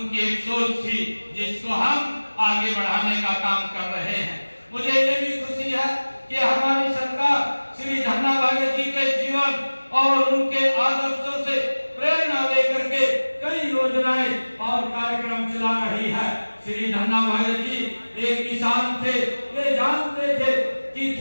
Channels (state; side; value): inverted; both; correlation -1.00